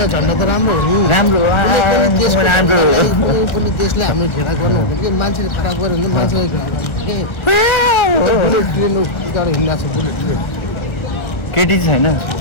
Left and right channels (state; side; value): late; right; 1.3 ms